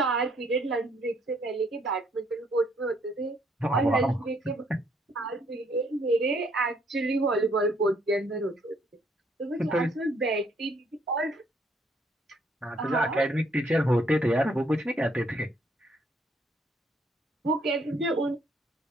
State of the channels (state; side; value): normal; both; correlation 0.67